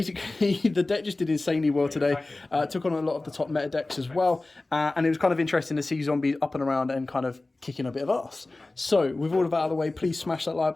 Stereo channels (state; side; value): quieter; right; 3.0 dB